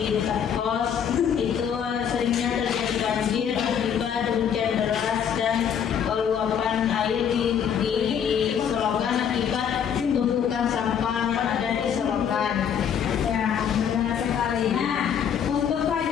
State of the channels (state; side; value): quieter; right; 8.1 dB